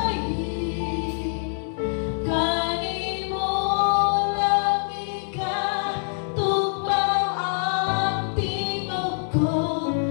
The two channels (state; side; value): silent; right; digital silence